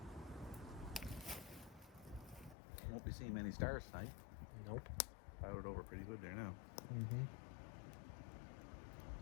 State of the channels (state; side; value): drops out; right; at 2.6 s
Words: Won't be seeing many stars tonight. Nope. Clouded over pretty good there now. Mm-hmm.